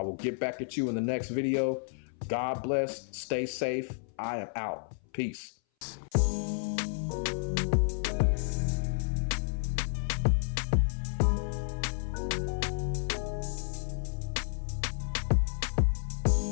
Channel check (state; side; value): silent; right; 57 dB below the other